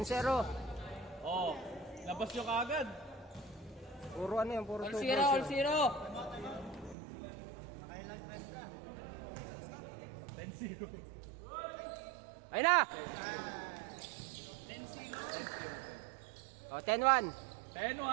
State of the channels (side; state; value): left; drops out; at 7.0 s